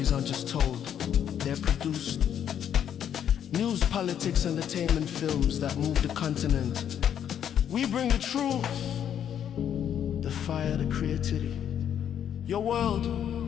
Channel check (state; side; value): quieter; right; 9.4 dB